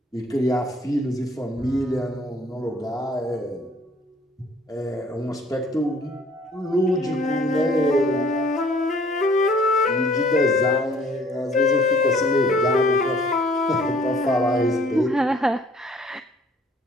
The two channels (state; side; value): normal; both; correlation 0.57